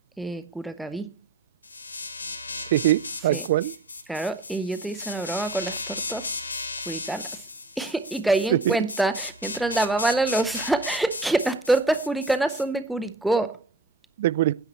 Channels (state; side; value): quieter; left; 3.4 dB